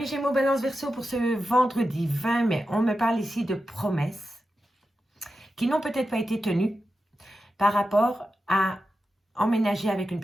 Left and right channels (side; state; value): both; normal; correlation 0.90